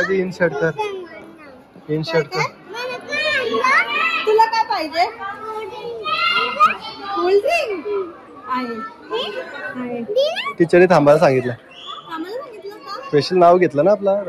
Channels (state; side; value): identical; both; correlation 1.00